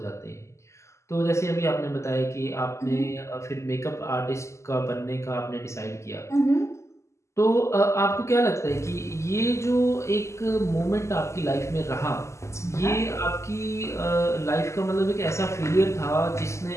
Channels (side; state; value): right; late; 0.13 ms